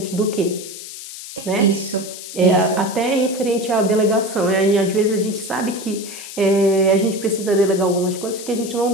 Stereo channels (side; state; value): left; noise; hiss, 12 dB below the sound